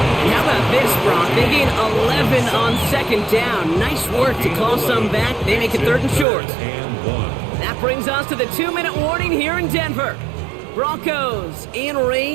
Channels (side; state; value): left; drops out; at 6.2 s